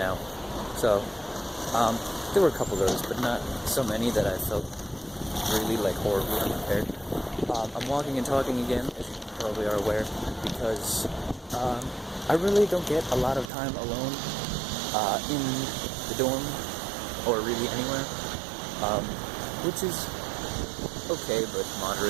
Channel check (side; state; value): left; drops out; at 13.5 s